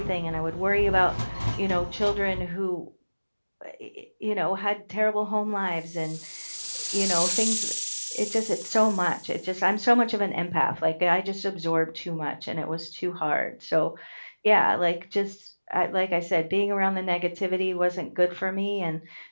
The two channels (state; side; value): inverted; both; correlation -1.00